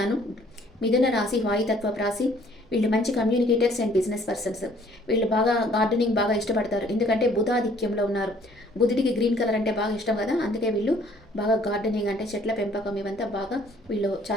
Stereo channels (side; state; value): both; normal; correlation 0.59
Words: మిథున రాశి వాయుతత్వ రాశి. వీళ్ళు మంచి కమ్యూనికేటర్స్ అండ్ బిజినెస్ పర్సన్స్. వీళ్ళు బాగా గార్డెనింగ్ బాగా ఇష్టపడతారు, ఎందుకంటే బుధాధిక్యంలో ఉన్నారు. బుధుడికి గ్రీన్ కలర్ అంటే బాగా ఇష్టం కదా, అందుకే వీళ్ళు బాగా గార్డెనింగ్ అంటే చెట్ల పెంపకం ఇవంతా బాగా వీళ్ళు